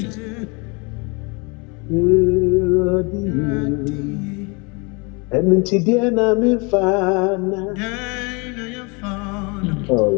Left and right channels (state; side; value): quieter; right; 30.1 dB